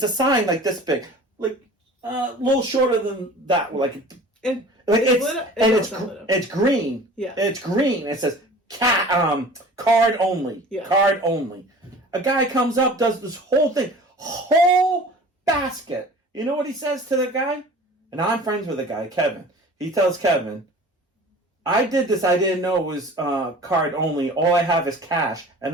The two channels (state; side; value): normal; both; correlation 0.43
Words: a sign like this big, like a little shorter than that. It's green. Yeah, it's green. It says card only. Yeah. Card only. A guy comes up, does this whole thing, whole basket. You know what he says to the guy? And I'm friends with the guy, Kevin. He tells Kevin, I did this. I didn't know it was card only. All I have is cash,